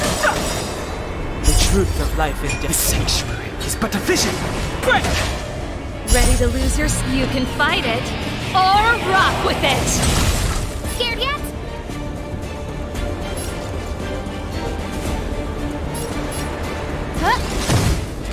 The truth of life in death. The sanctuary is but a vision. Break! Ready to lose your... You can fight it, or rock with it! Scared yet? Huh?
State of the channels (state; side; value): identical; both; correlation 1.00